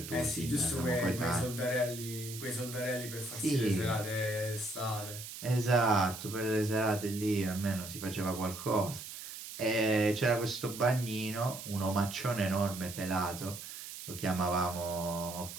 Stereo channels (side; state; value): right; noise; hiss, 10 dB below the sound